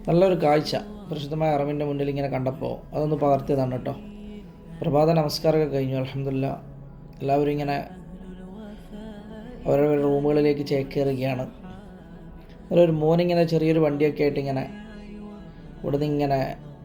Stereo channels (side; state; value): both; identical; correlation 1.00